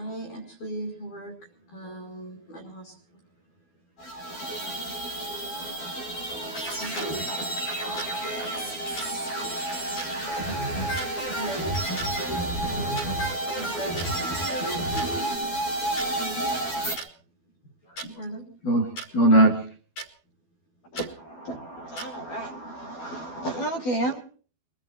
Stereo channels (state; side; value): late; right; 12 ms